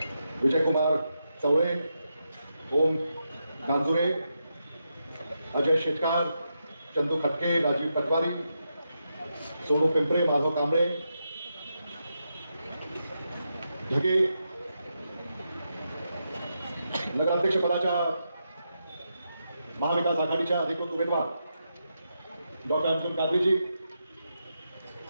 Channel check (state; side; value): inverted; both; correlation -0.85